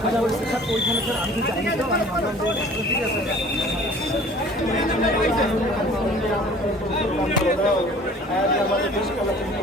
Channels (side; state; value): both; normal; correlation 0.48